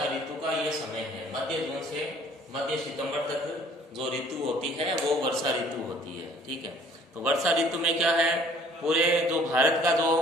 ऋतु का ये समय है। मध्य जून से मध्य सितंबर तक जो ऋतु होती है वो वर्षा ऋतु होती है। ठीक है, तो वर्षा ऋतु में क्या है, पूरे जो भारत का जो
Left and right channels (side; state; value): both; normal; correlation 0.55